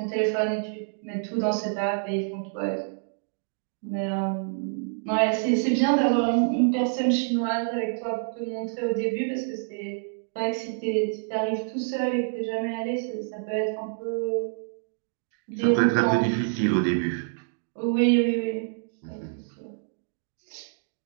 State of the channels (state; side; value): silent; left; digital silence